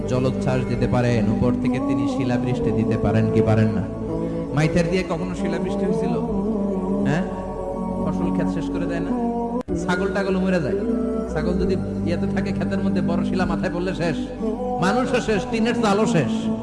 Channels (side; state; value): both; identical; correlation 1.00